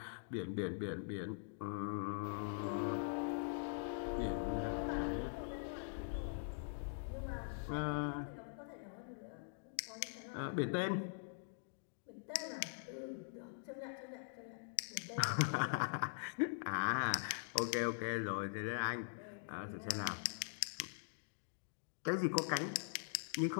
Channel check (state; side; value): silent; right; digital silence